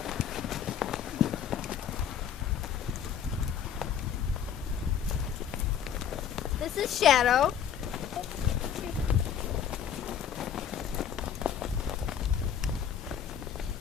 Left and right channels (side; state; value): right; quieter; 8.5 dB